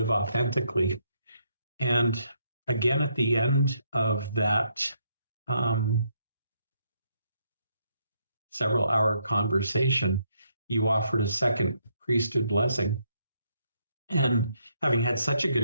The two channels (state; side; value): inverted; both; correlation -0.75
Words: authentically. And again, at the end of that um, several hour conversation, you offered a second priesthood blessing. And having had such a good